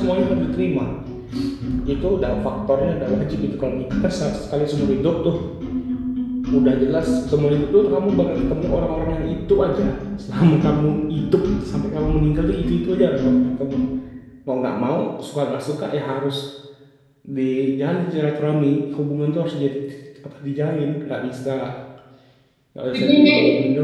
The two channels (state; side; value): identical; both; correlation 1.00